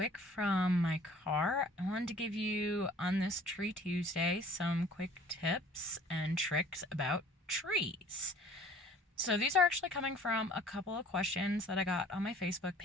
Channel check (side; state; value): both; normal; correlation 0.52